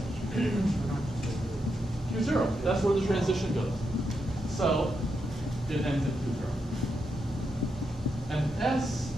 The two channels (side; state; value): both; normal; correlation 0.84